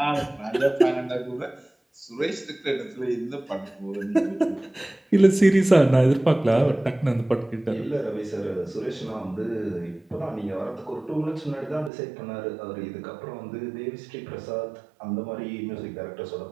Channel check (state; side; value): drops out; left; at 11.9 s